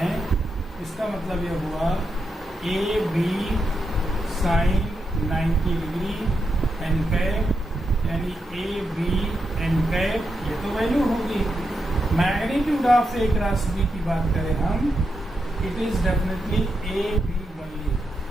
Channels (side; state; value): both; normal; correlation 0.85